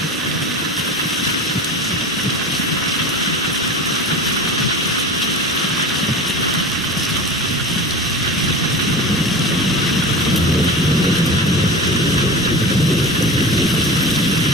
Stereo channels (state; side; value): normal; both; correlation 0.32